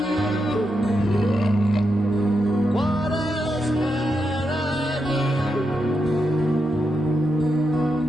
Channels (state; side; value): normal; both; correlation 0.84